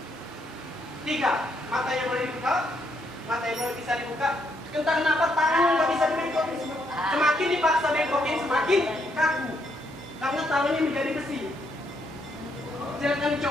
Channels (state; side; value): normal; both; correlation 0.75